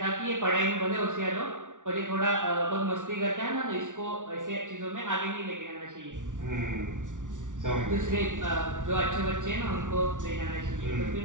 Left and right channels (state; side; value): late; left; 0.87 ms